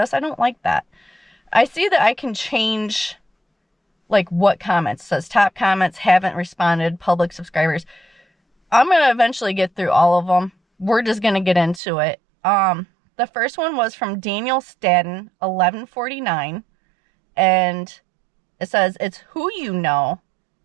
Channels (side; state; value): left; drops out; at 11.8 s